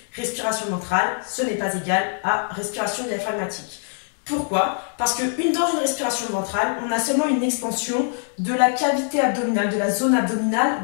Respiration ventrale, ce n'est pas égal à respiration diaphragmatique. Pourquoi? Parce que dans une respiration ventrale, on a seulement une expansion de la cavité abdominale, de la zone abdominale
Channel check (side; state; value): right; silent; 58 dB below the other